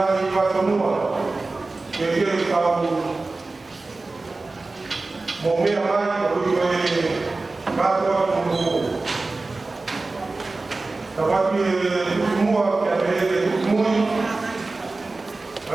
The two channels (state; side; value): quieter; left; 3.4 dB